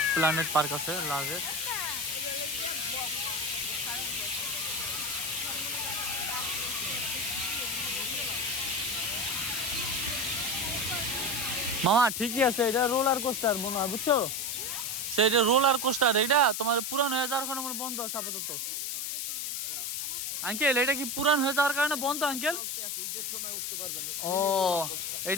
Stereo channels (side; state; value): left; noise; hiss, 2 dB below the sound